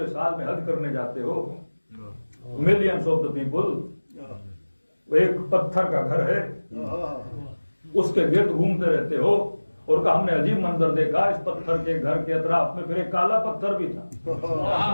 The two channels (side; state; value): both; inverted; correlation -1.00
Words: साल में हज करने जाते हो, मिलियंस ऑफ द पीपल, वो एक पत्थर का घर है, उसके गिर्द घूमते रहते हो, और का हमने अजीब मंजर देखा, इस पत्थर के घर के अतराफ में फिर एक काला पत्थर भी था।